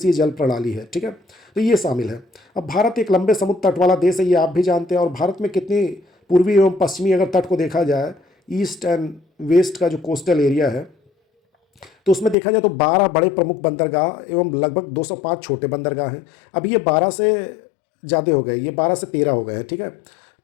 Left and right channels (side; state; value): right; drops out; at 12.4 s